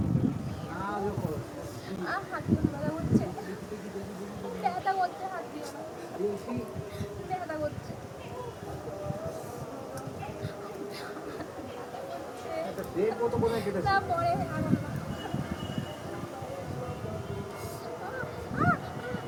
কত কোথায় কেটেছে?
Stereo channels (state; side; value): identical; both; correlation 1.00